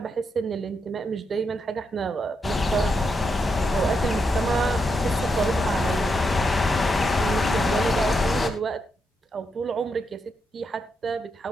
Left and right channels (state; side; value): normal; both; correlation 0.82